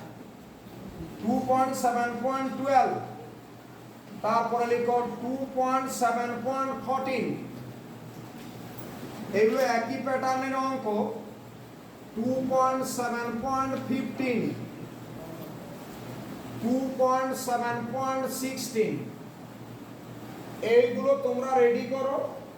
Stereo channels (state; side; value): identical; both; correlation 1.00